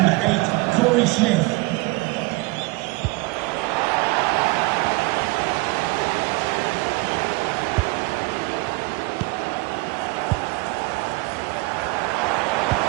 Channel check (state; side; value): quieter; left; 24.4 dB